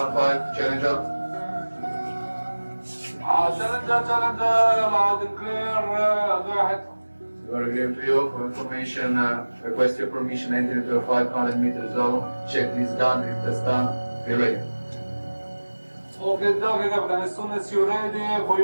challenger. Challenger, loud and clear, go ahead. You are agreeing to you for information, request your permission entry into a 500-meter zone. Checklist done, rig test done, be ready. Okay, Captain, as soon as you're ready, for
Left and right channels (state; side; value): inverted; both; correlation -1.00